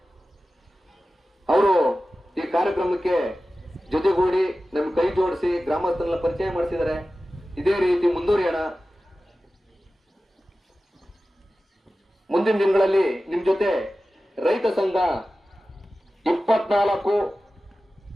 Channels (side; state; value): both; normal; correlation 0.95